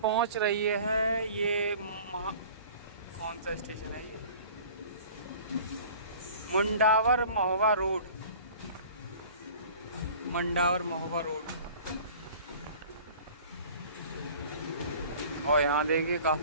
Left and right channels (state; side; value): inverted; both; correlation -0.46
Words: पहुंच रही है। ये कौन सा स्टेशन है ये? मुंडावर महोबा रोड। मंडावर महोबा रोड। और यहाँ देखिए